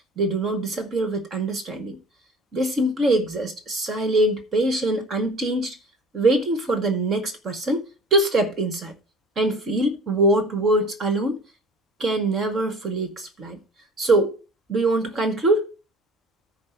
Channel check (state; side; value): normal; both; correlation 0.43